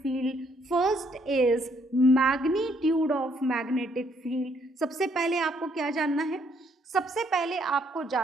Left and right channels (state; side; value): normal; both; correlation 0.69